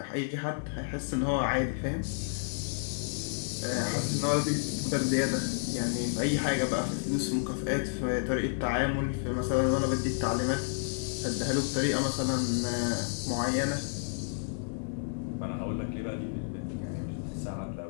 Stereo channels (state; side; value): silent; right; 57 dB below the other